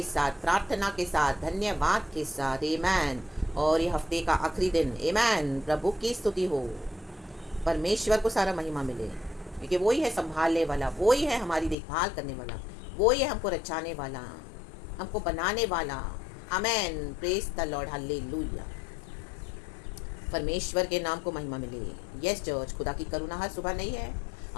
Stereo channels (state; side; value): drops out; right; at 11.8 s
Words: साथ, प्रार्थना के साथ, धन्यवाद के साथ। आमेन। और ये हफ्ते का आखिरी दिन। आमेन। प्रभु की स्तुति हो, परमेश्वर को सारा महिमा मिले, क्योंकि वही है संभालने वाला, वही है हमारी देखभाल करने वाला, वही है हमको रचाने वाला, हमको बनाने वाला। Amen. Praise the lord, hallelujah. परमेश्वर के नाम को महिमा मिले। यस चर्च, खुदा की करुणा हर सुबह नहीं है,